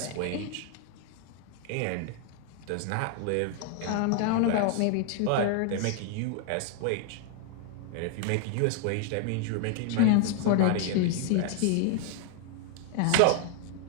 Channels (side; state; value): both; different; correlation 0.00